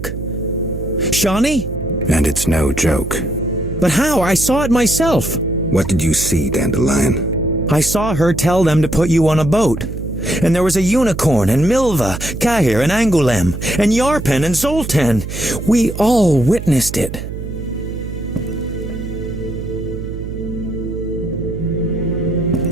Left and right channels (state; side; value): noise; right; hum, 8 dB below the sound